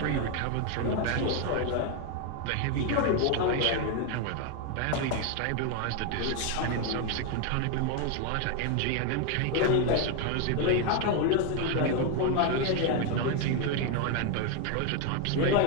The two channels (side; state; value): both; different; correlation 0.01